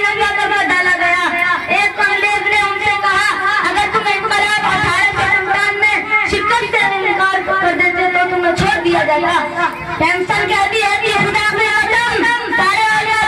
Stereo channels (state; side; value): identical; both; correlation 1.00